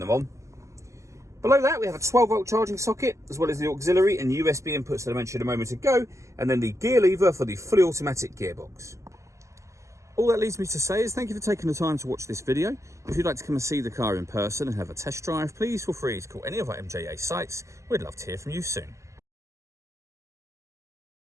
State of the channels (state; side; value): late; left; 0.15 ms